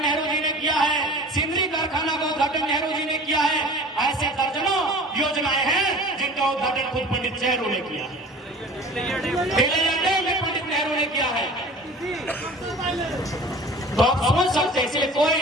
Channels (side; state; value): both; normal; correlation 0.41